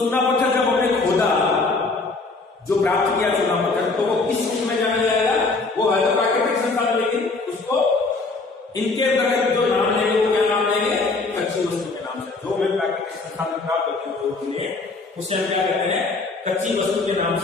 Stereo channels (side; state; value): right; quieter; 3.7 dB